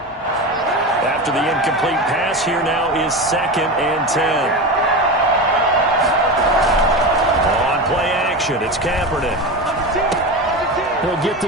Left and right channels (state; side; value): normal; both; correlation 0.23